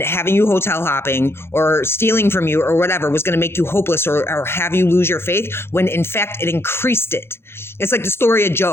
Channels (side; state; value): right; late; 0.12 ms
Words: having you hotel hopping or stealing from you or whatever was going to make you hopeless or have you lose your faith, when in fact it increased it. It's like the story of